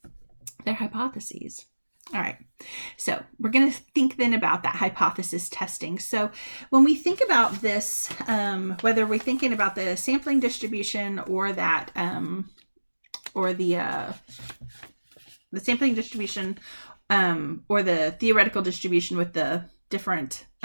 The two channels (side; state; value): both; inverted; correlation -1.00